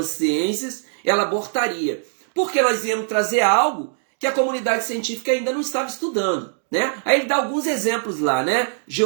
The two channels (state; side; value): silent; left; digital silence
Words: ciências, ela abortaria. Porque nós íamos trazer algo que a comunidade científica ainda não estava estudando, né? Aí ele dá alguns exemplos lá, né?